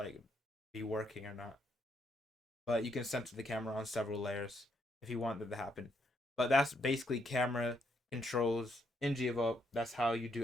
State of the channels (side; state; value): both; normal; correlation 0.75